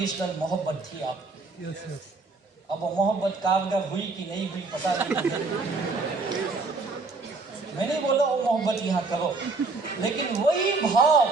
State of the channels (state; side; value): quieter; left; 3.8 dB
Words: मोहब्बत थी आपकी। Yes yes. अब वो मोहब्बत कारगर हुई कि नहीं हुई पता नहीं। मैं नहीं बोला वो मोहब्बत यहाँ करो, लेकिन वही